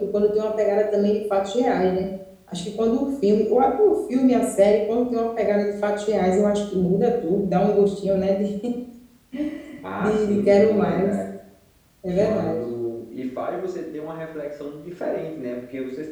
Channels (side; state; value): both; identical; correlation 1.00